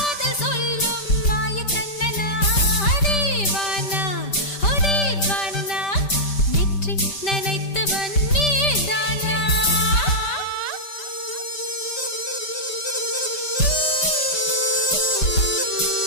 சொல்லும் மாய கண்ணனா தீவானா ஹோ தீவானா நெற்றி நனைத்தவன் நீதானா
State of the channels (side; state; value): right; late; 5.1 ms